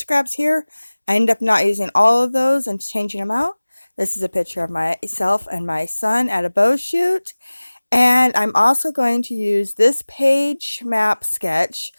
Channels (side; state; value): both; inverted; correlation -1.00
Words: here. I ended up not using all of those and changing them out. This is a picture of myself and my son at a bow shoot, and I'm also going to use this page map sketch